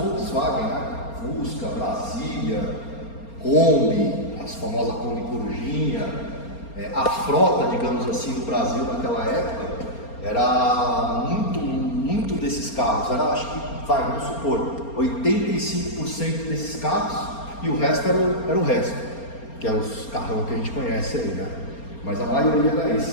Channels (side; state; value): right; late; 4.3 ms